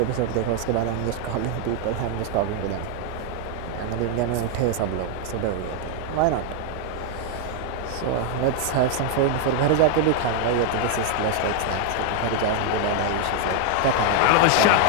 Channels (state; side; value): different; both; correlation 0.00